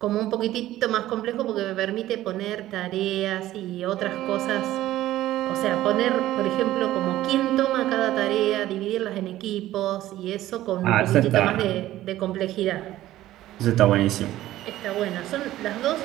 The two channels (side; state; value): left; quieter; 14.6 dB